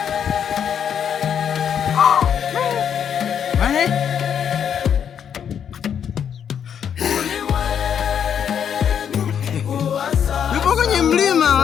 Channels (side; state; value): right; quieter; 8.3 dB